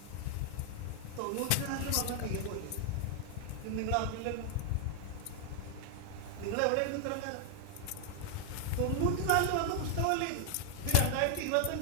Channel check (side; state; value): both; different; correlation 0.00